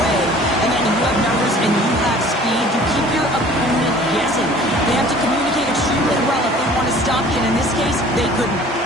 And then you have numbers and you have speed. You keep your opponent guessing. They have to communicate extremely well if they want to stop you. And in this case, they couldn't.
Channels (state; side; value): normal; both; correlation 0.49